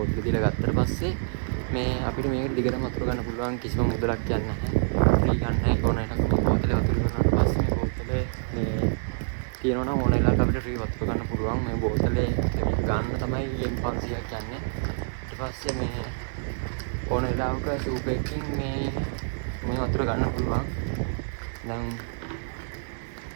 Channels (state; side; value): silent; left; 60 dB below the other